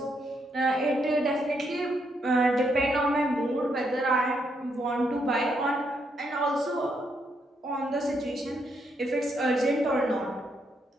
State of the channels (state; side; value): normal; both; correlation 0.77